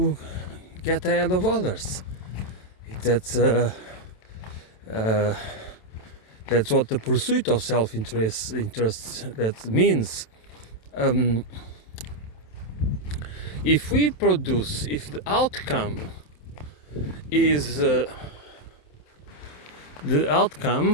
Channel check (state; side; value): late; right; 27 ms